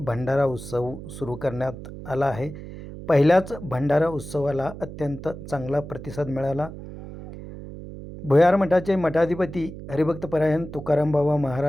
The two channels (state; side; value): noise; right; hum, 12 dB below the sound